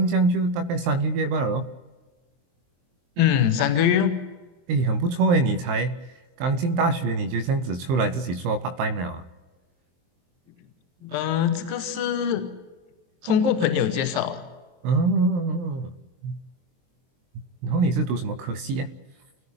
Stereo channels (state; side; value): late; left; 23 ms